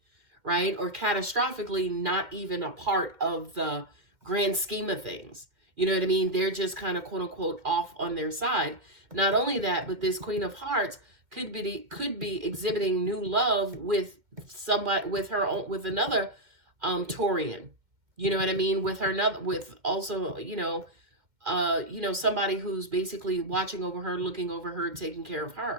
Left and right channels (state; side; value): late; left; 2.1 ms